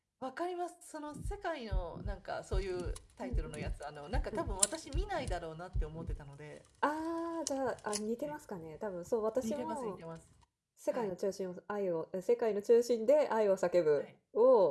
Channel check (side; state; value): both; identical; correlation 1.00